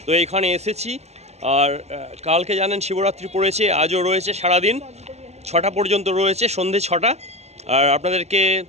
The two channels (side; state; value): left; late; 0.31 ms